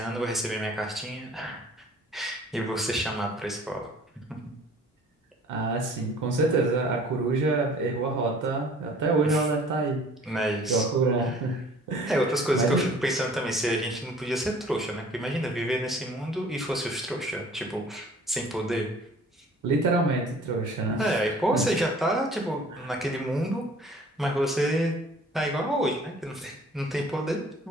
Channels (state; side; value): normal; both; correlation 0.51